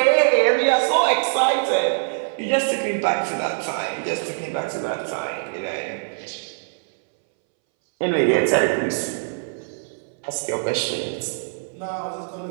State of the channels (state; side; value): silent; left; 64 dB below the other